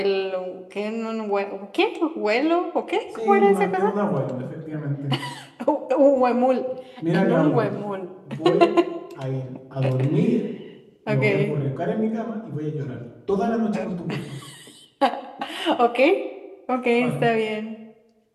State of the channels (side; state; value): both; identical; correlation 1.00